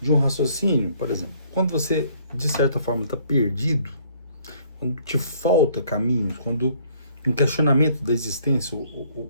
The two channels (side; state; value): both; inverted; correlation -0.62